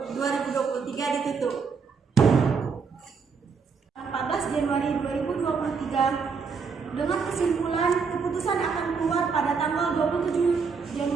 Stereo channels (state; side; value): quieter; left; 5.4 dB